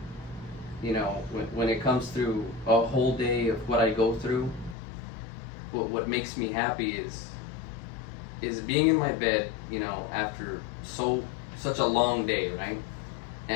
you know, when it comes through a whole day of what I go through, what makes me happy is being in my bed, you know, after such a long day, right?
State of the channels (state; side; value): drops out; right; at 4.8 s